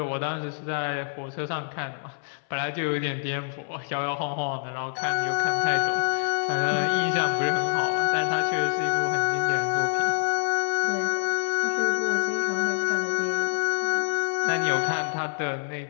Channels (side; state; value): right; silent; 61 dB below the other